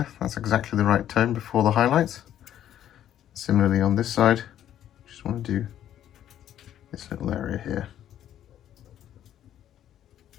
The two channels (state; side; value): quieter; right; 11.1 dB